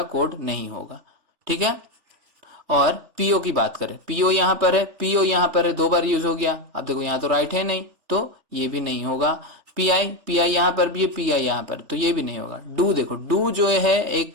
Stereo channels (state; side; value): late; left; 3.4 ms